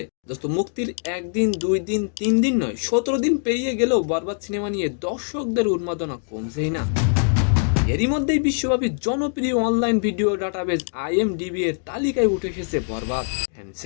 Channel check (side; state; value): right; silent; digital silence